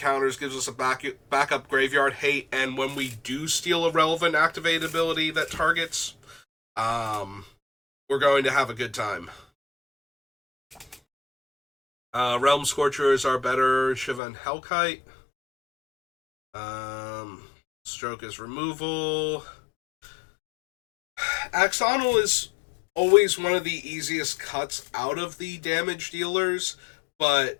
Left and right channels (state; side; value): drops out; right; at 14.2 s